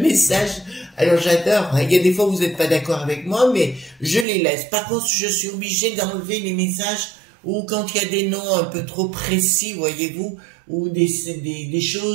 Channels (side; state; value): left; drops out; at 4.2 s